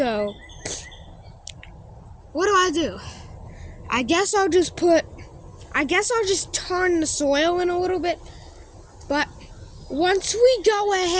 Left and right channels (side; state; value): both; identical; correlation 1.00